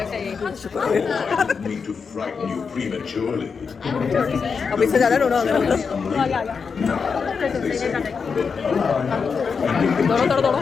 Me to frighten you prematurely. अब इससे ज़्यादा रोना होगा। दौड़ो।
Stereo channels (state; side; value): quieter; right; 5.6 dB